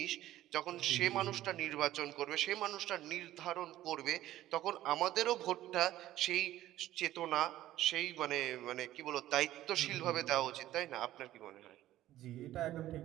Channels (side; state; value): left; quieter; 14.2 dB